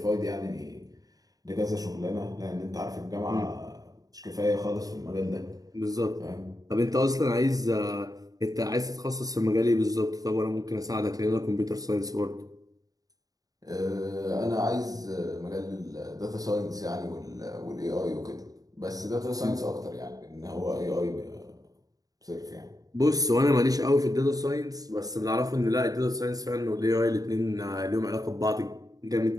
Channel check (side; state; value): left; late; 0.18 ms